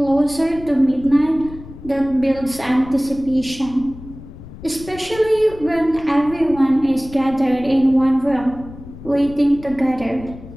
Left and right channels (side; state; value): left; noise; rumble, 16 dB below the sound